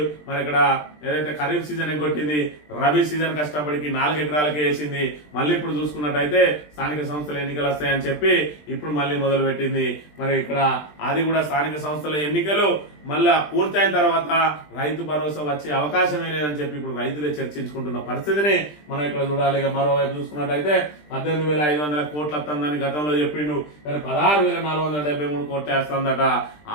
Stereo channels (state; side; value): late; right; 20 ms